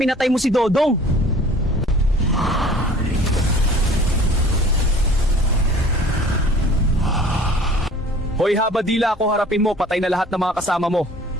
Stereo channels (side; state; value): both; normal; correlation 0.49